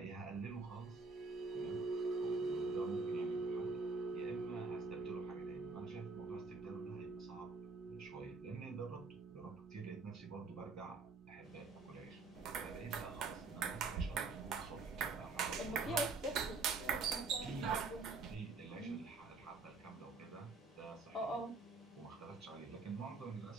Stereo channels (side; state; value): left; quieter; 4.1 dB